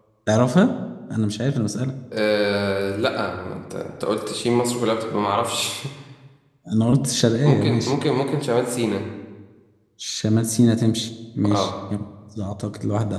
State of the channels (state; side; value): identical; both; correlation 1.00